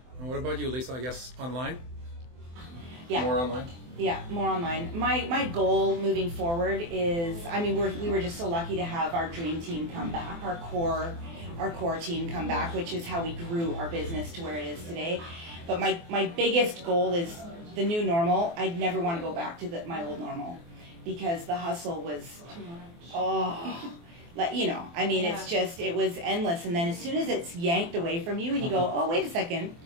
And what about you, Lisa? I guess online? Yeah. More online? Yeah, more online. My goal moving forward is, I mean, we were just so lucky to have our dream team come back, our core team come back, which is how we grew our business to where it is today. But my biggest goal is the new normal. I'd never want to go back to my old normal, because the hustle was, like, I mean, it's just, it was endless. And then as soon as it's yanked away from you and you go, oh, wait a second,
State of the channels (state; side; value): late; left; 24 ms